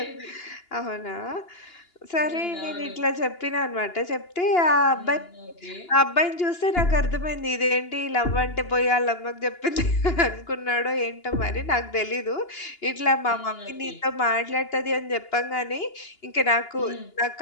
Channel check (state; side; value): late; right; 2.9 ms